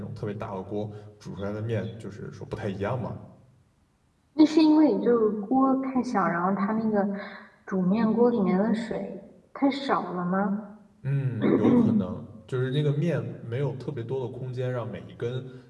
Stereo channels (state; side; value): identical; both; correlation 1.00